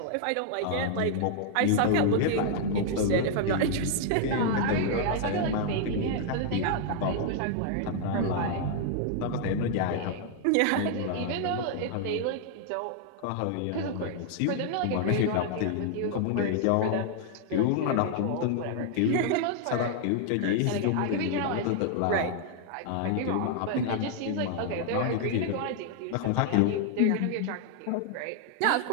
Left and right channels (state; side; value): different; both; correlation 0.00